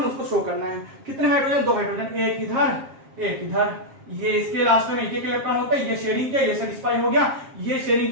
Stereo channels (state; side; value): late; left; 7.5 ms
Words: उसको शो करना है। कितने हाइड्रोजन, दो हाइड्रोजन, एक इधर, एक इधर। ये इसके लास्ट में एक एक इलेक्ट्रॉन होता है। ये शेयरिंग किया, ये सेटिस्फाई हो गया, ये शेयरिंग